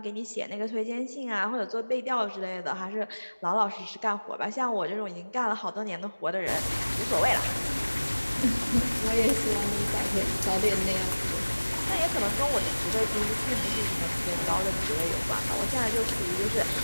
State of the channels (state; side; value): inverted; both; correlation -1.00